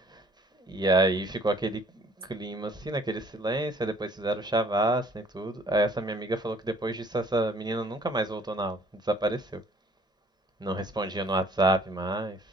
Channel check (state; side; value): normal; both; correlation 0.57